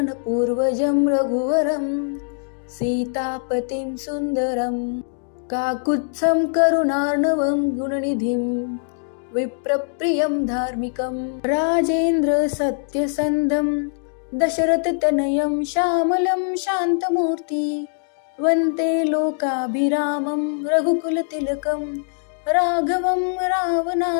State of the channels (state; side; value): silent; right; digital silence